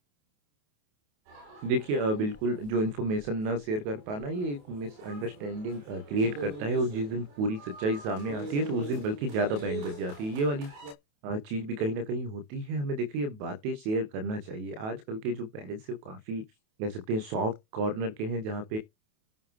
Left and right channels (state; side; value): late; left; 28 ms